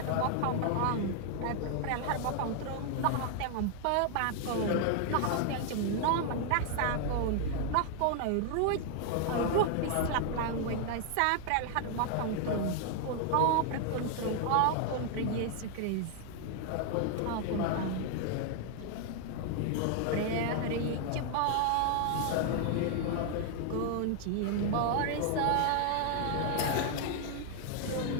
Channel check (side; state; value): both; different; correlation 0.00